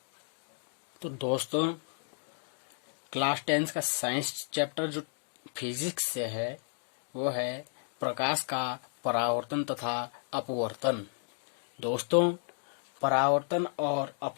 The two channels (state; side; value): silent; right; digital silence